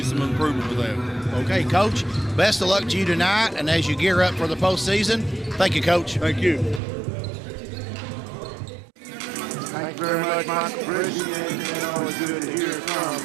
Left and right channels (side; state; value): left; drops out; at 6.8 s